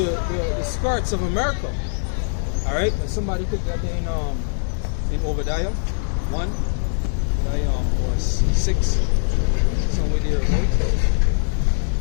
skirts of America. Alright, and somebody could get in Obadiah 1, or 6, somewhere there, right?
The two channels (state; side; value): silent; right; digital silence